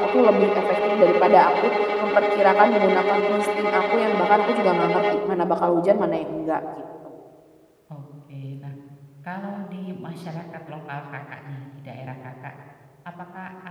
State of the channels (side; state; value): both; identical; correlation 1.00